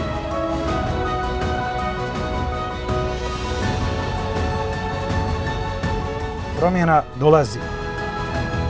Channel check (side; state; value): both; identical; correlation 1.00